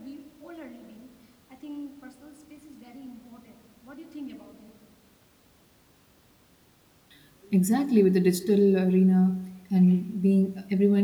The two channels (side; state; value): both; identical; correlation 1.00